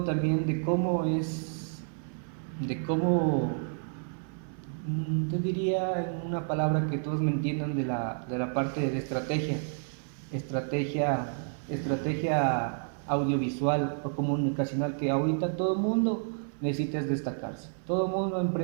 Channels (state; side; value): silent; left; 58 dB below the other